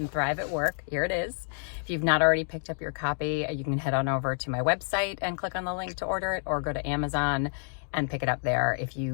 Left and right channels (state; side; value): silent; right; 59 dB below the other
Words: Thrive at Work. Here it is. If you've not already picked up your copy, you can head on over to my website and click on the link to order it, or go to Amazon and pick it up there. If